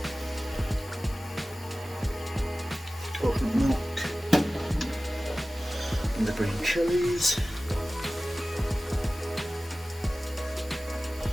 Coconut milk. And the green chilies.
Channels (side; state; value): both; normal; correlation 0.96